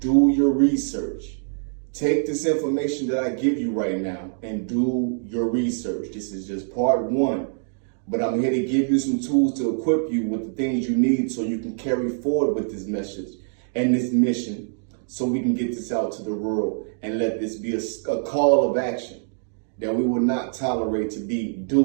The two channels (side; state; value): left; silent; digital silence